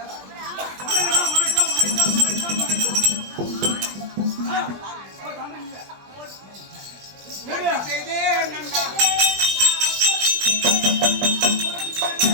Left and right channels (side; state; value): left; late; 20 ms